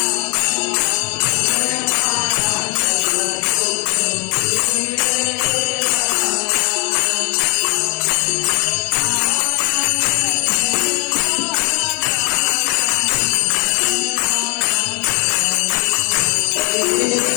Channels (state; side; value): quieter; right; 37.0 dB